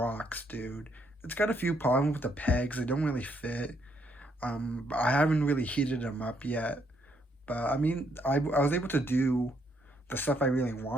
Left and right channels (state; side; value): normal; both; correlation 0.73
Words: dude. It's got a few problems with the pegs. They don't really fit. I haven't really heated them up yet. But I mean, I was able to do the stuff I really